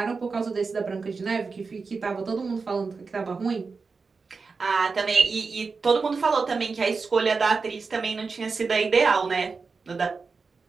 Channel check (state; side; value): quieter; left; 4.6 dB